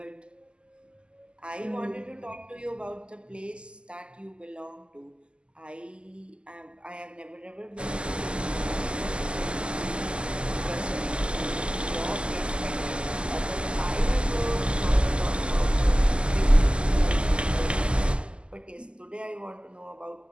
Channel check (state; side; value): late; left; 0.051 ms